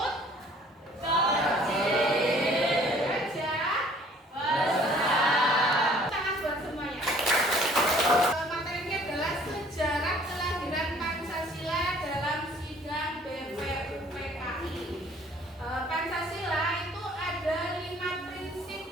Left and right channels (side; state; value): both; normal; correlation 0.55